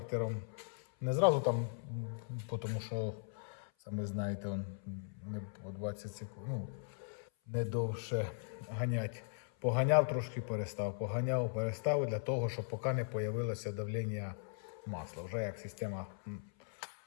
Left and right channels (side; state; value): right; silent; 52 dB below the other